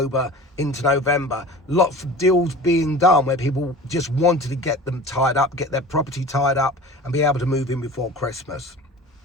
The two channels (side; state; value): both; normal; correlation 0.38